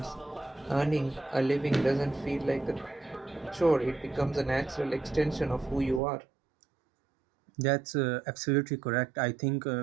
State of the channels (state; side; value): drops out; left; at 6.0 s